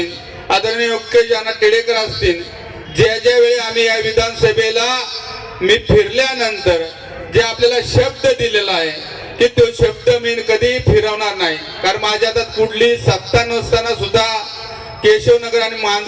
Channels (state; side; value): identical; both; correlation 1.00